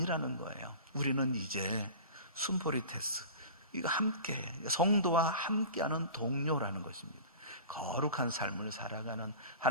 거예요. 우리는 이제 순포리테스, 이거 함께 성도와 함께하는 동료라는 것입니다. 거룩한 삶을 살아가는,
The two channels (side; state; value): both; inverted; correlation -0.37